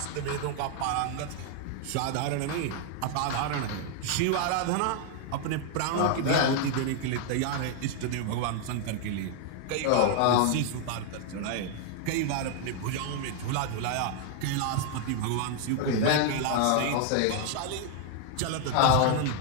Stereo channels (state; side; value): different; both; correlation 0.00